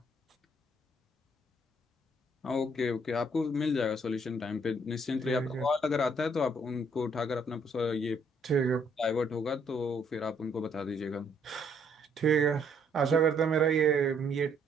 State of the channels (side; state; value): both; normal; correlation 0.67